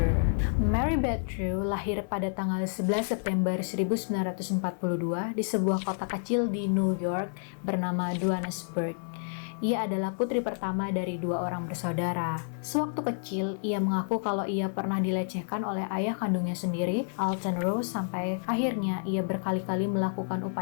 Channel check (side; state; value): right; silent; 58 dB below the other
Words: Mary Beth True lahir pada tanggal 11 September 1942 di sebuah kota kecil di New York bernama Johannesburg. Ia adalah putri pertama dari dua orang bersaudara. Sewaktu kecil, ia mengaku kalau ia pernah dilecehkan oleh ayah kandungnya sendiri, Alton Rose, sampai akhirnya ia berkali-kali melakukan